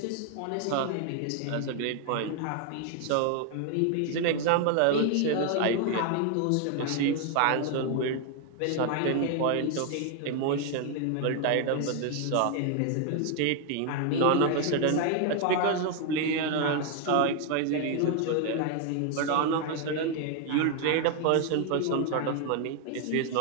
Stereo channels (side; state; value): both; different; correlation 0.00